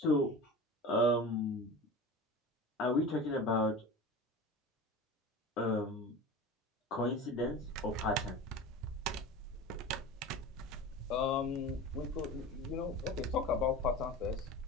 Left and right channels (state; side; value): normal; both; correlation 0.32